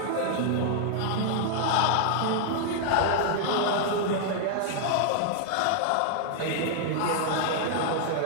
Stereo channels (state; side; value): different; both; correlation 0.00